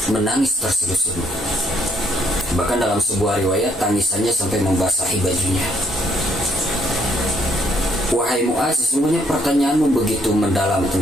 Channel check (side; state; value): both; normal; correlation 0.69